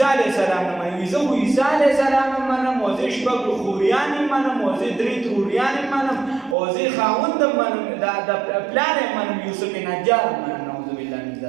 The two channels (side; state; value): left; drops out; at 6.6 s